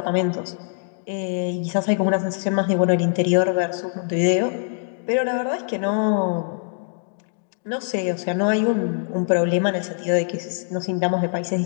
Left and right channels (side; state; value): right; silent; digital silence